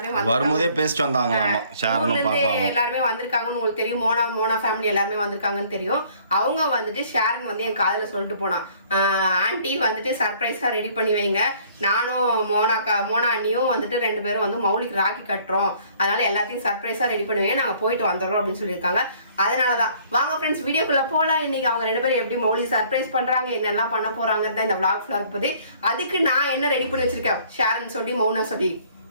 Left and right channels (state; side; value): inverted; both; correlation -0.58